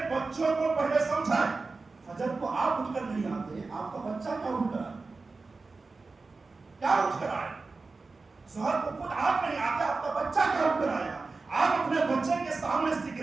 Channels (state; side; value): quieter; left; 3.9 dB